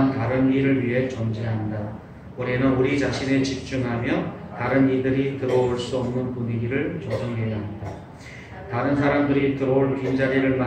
다른 이를 위해 존재한다. 우리는 우리 자신에 집중하며 다른 이들이 들어올 수 없는 분위기를 조성해야 한다. 다른 사람들이 들어올 빈자리를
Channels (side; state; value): both; identical; correlation 1.00